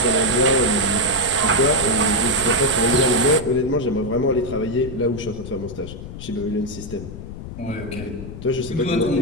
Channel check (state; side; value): noise; left; rumble, 11 dB below the sound